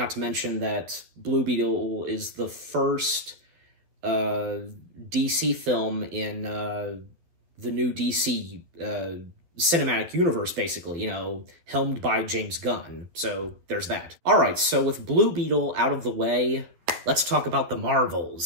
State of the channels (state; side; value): late; left; 12 ms